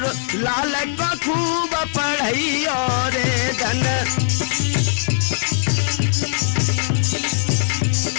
लाल को खूब पढ़ई और धन।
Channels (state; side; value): silent; right; digital silence